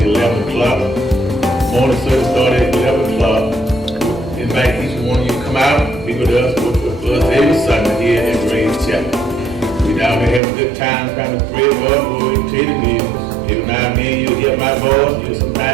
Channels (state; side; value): drops out; left; at 10.4 s